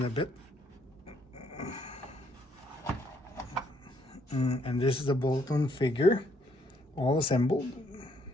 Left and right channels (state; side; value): normal; both; correlation 0.70